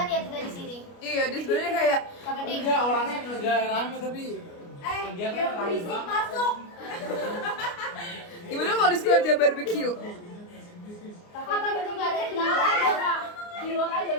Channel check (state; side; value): late; right; 29 ms